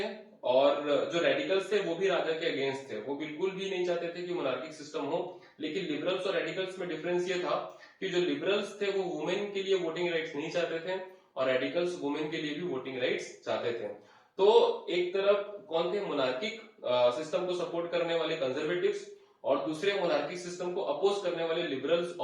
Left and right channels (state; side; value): identical; both; correlation 1.00